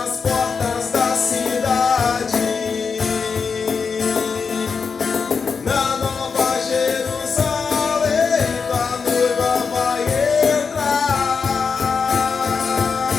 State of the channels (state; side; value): quieter; right; 5.5 dB